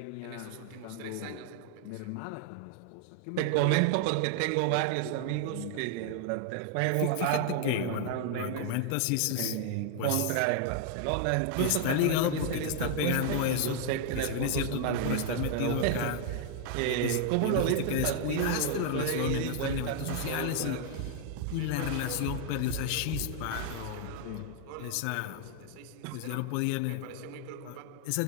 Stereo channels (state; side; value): different; both; correlation 0.00